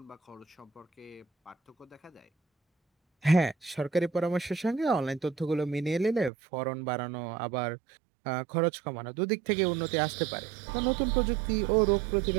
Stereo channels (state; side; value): drops out; left; at 6.3 s